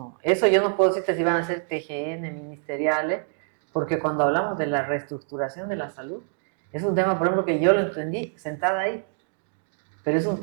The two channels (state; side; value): silent; left; digital silence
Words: Eso yo no puedo decirte si van a ser TGN, ministeriales, porque cuando hablamos de la reestructuración de la salud, es un tema, por ejemplo, que yo lo entendí sentada ahí, pero es un